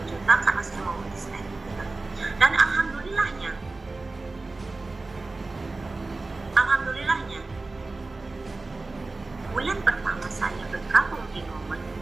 juta karena saya mau resign gitu. Dan alhamdulillahnya bulan pertama saya bergabung di Momen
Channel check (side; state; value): left; quieter; 3.4 dB